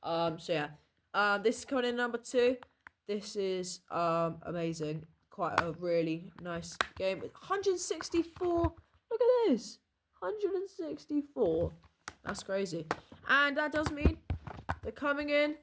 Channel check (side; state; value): both; identical; correlation 1.00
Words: So yeah. This is coming in number 2. This is amazing. Quite a really nice game. 164. Look at this. 164. That's crazy. And that does mean they're coming in